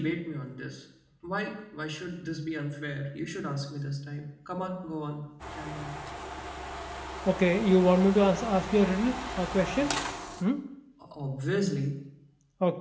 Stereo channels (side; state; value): both; identical; correlation 1.00